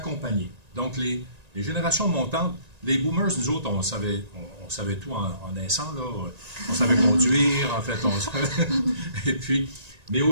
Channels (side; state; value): left; late; 1.9 ms